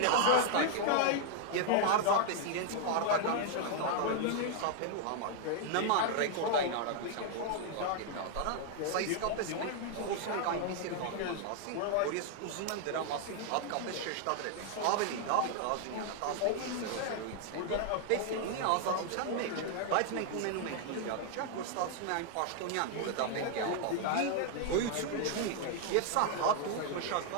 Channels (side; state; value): both; different; correlation 0.00